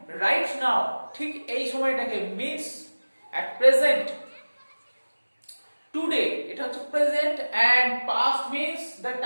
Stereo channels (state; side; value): inverted; both; correlation -1.00